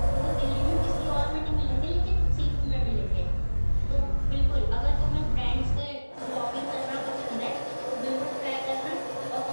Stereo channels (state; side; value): inverted; both; correlation -1.00